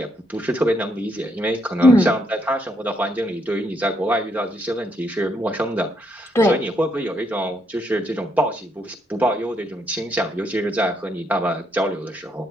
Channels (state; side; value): normal; both; correlation 0.75